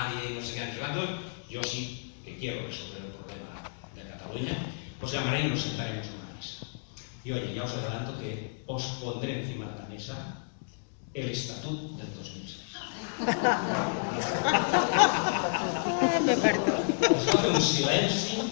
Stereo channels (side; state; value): right; silent; digital silence